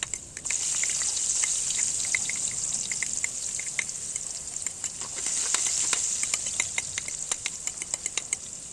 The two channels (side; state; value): both; identical; correlation 1.00